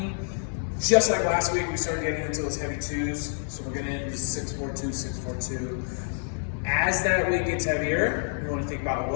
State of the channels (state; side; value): silent; right; digital silence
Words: Just like last week, we started getting into those heavy twos. So we're getting into 642, 642. As that weight gets heavier, we want to think about